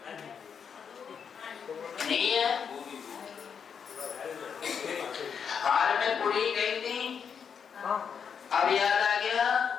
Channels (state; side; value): quieter; right; 6.9 dB